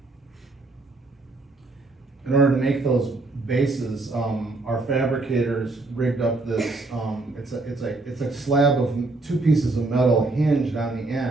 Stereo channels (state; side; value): quieter; left; 3.3 dB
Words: In order to make those bases, our fabricators rigged up this, it's a slab of 2 pieces of metal hinged on the